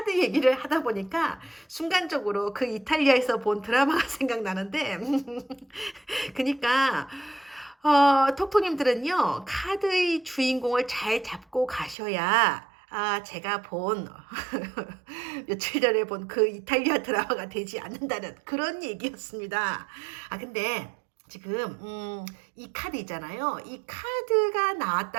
얘기를 하다 보니까 순간적으로 그 이탈리아에서 본 드라마가 생각나는데 그니까 톡톡님들은요 카드의 주인공을 잘 잡고 가셔야 제가 본 며칠 전에 본 그 이탈리아 드라마가 되지 않는다는 그런 얘기였습니다. 근데 지금 이 카드 있잖아요. 이 카드가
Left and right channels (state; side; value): drops out; left; at 12.0 s